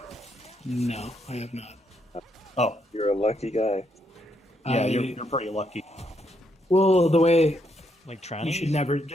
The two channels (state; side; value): normal; both; correlation 0.76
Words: no, I have not. Oh, You're a lucky guy. yeah, I- you're pretty lucky. Well, the way Like you trannies?